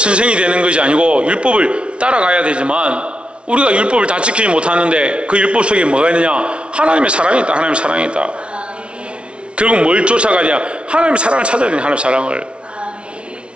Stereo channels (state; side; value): late; left; 0.059 ms